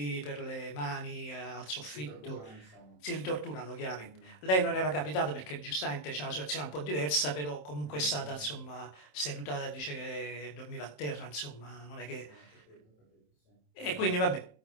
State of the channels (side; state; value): right; late; 27 ms